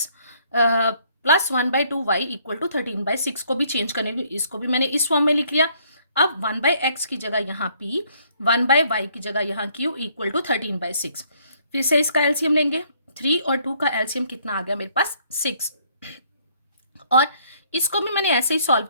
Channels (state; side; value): inverted; both; correlation -0.65